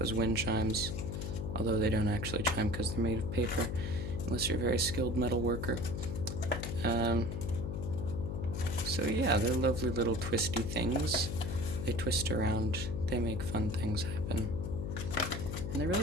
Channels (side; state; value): left; noise; hum, 4 dB below the sound